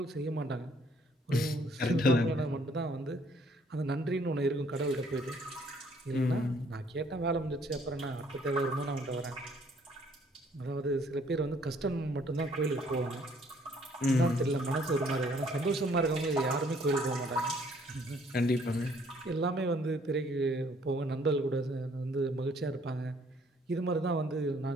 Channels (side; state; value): both; normal; correlation 0.62